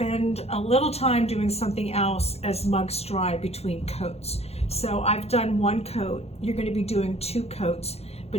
a little time doing something else as mugs dry between coats. So I've done 1 coat. You're going to be doing 2 coats,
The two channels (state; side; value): late; right; 0.30 ms